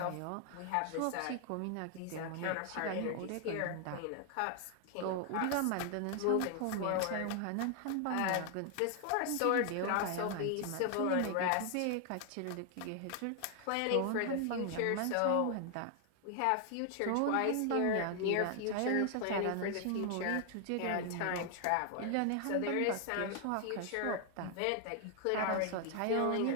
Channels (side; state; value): both; different; correlation 0.00